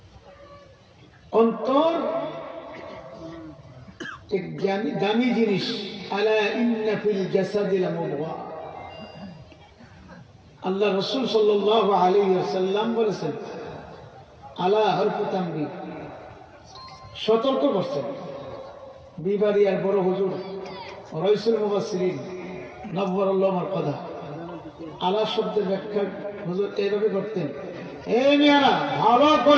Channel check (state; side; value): identical; both; correlation 1.00